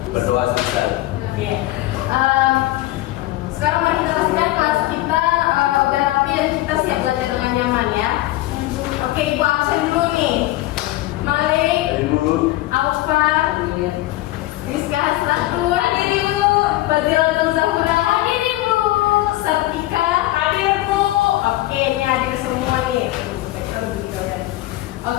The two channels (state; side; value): quieter; right; 17.1 dB